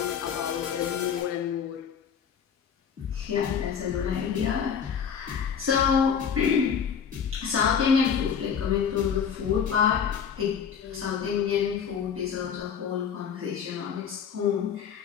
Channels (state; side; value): quieter; right; 7.4 dB